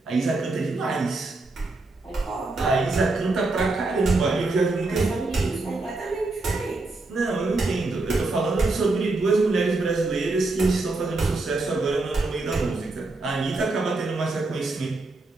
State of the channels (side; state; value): left; quieter; 3.3 dB